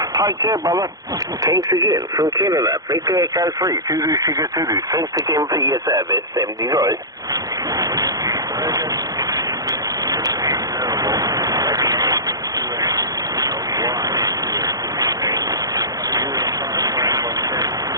Take care, brother. Thanks again from Canada. Victor Echo 3 Zulu Sugar Zulu. Thanks again for your service. 73.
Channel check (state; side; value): late; left; 0.18 ms